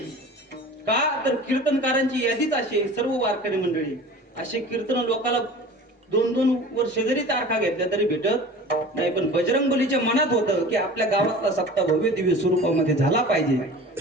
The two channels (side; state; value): both; normal; correlation 0.39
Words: का तर कीर्तनकारांची यादीच अशी, सर्व वारकरी मंडळी असे कीर्तन लोकांना 2-2 वर्ष जरी तारखा घेतल्या तरी भेटत नाही. पण बजरंगबलीच्या मनात होतं की आपल्या गावातला सप्ताह भव्य दिव्य स्वरूपामध्ये झाला पाहिजे.